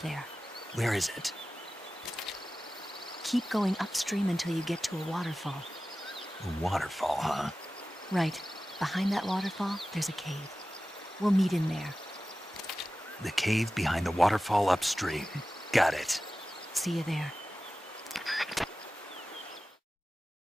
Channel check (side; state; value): both; normal; correlation 0.95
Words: Where is it? Keep going upstream until you get to a waterfall. A waterfall, huh? Right. Behind that waterfall, there's a cave. We'll meet in there. The cave behind the waterfall upstream. Got it. See you there.